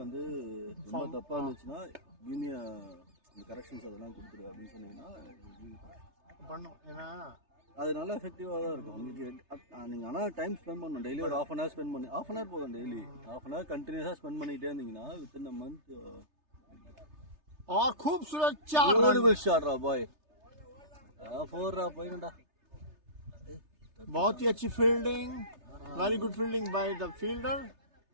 வந்து ரொம்ப தப்பாக இருந்துச்சுன்னா யூனிய இந்த கரெக்ஷன்ஸ் அதெல்லாம் கொடுத்துரு அப்படின்னு சொன்னீங்கன்னா பண்ணும். ஏன்னா அது நல்லா எஃபெக்டிவாக தான் இருக்கும் உங்களுக்கு. நீங்கள் ஆனால் டைம் ஸ்பெண்ட் பண்ணணும். டெய்லி ஒரு ஹாஃப் அன் ஹவர் ஸ்பெண்ட் பண்ணி, ஹாஃப் அன் ஹவர் போதும். டெய்லி ஹாஃப் அன் ஹவர் கண்டினியூஸாக ஸ்பெண்ட் பண்ணிகிட்டே இருந்தீங்கன்னா வித்தின் அ மந்த். और खूबसूरत 4 ब्यूटीफुल शॉट रहा बॉय. 4 रहा पॉइंट. बहुत ही अच्छी fielding, very good fielding by the fielder.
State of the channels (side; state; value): left; late; 3.3 ms